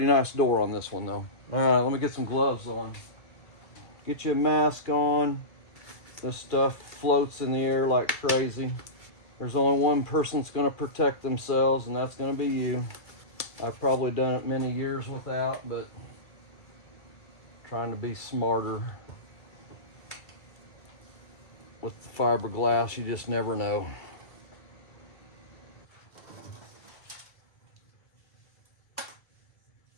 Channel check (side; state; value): right; late; 2.3 ms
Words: nice door on this one though. All right, let me get some gloves on. Get you a mask on. This stuff floats in the air like crazy. There's only one person that's going to protect themselves, and that's going to be you. I've probably done it many years without, but trying to be smarter with the fiberglass. You just never know.